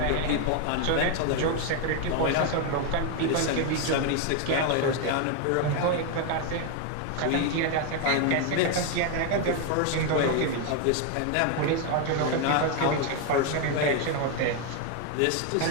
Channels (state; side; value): different; both; correlation 0.01